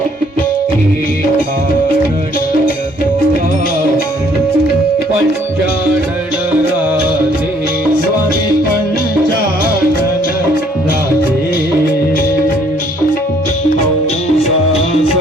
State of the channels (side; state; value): both; normal; correlation 0.63